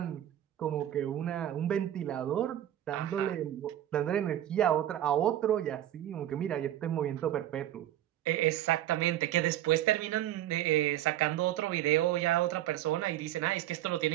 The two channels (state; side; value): quieter; left; 12.4 dB